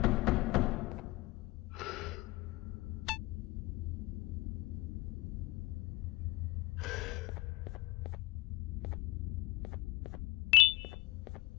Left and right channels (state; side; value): quieter; right; 20.6 dB